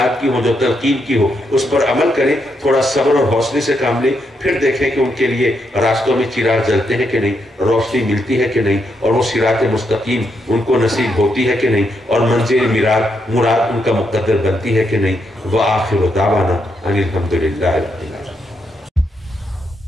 کی ہو، جو تلقین کی ہو، اس پر عمل کریں، تھوڑا صبر اور حوصلے سے کام لیں، پھر دیکھیں کہ ان کے لیے راستوں میں چراغ جلتے ہیں کہ نہیں، روشنی ملتی ہے کہ نہیں، اور وہ صراط مستقیم ان کو نصیب ہوتی ہے کہ نہیں، اور منزل مراد ان کا مقدر بنتی ہے کہ نہیں۔ وآخر دعوانا ان الحمدللہ رب العالمین۔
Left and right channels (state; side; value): normal; both; correlation 0.80